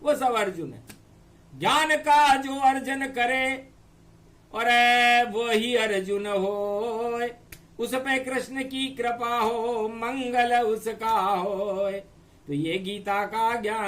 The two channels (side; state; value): both; identical; correlation 1.00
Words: वो सब अर्जुन है। ज्ञान का जो अर्जन करे और वो ही अर्जुन हो, उस पे कृष्ण की कृपा हो, मंगल उसका हो। तो ये गीता का